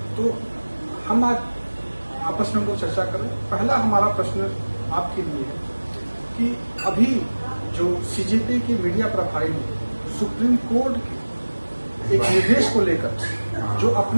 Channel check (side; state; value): both; inverted; correlation -1.00